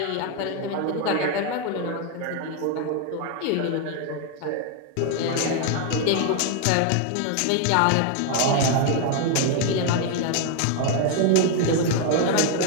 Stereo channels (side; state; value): both; different; correlation 0.01